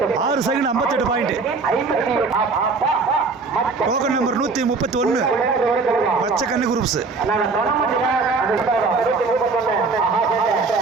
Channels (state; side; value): quieter; left; 4.3 dB